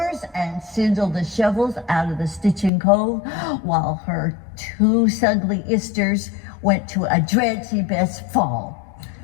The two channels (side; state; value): right; drops out; at 2.7 s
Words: and sindle the shovels out of the stitching cove, while her two sugly isters went to a dreadful best fall.